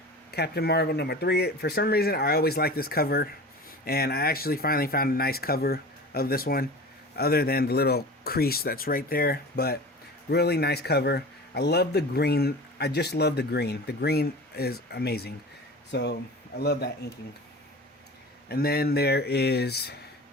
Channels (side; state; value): both; normal; correlation 0.36